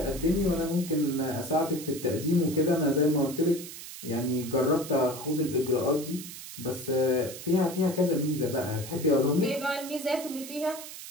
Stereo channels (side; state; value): right; noise; hiss, 12 dB below the sound